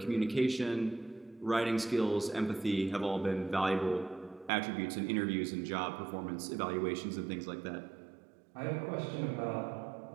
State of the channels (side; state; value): left; drops out; at 4.5 s